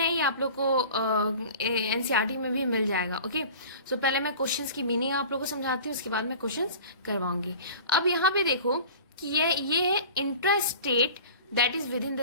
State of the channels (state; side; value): inverted; both; correlation -0.41